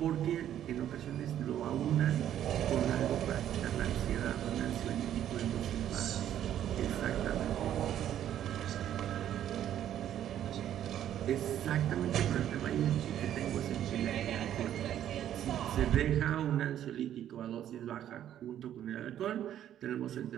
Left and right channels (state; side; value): quieter; left; 11.0 dB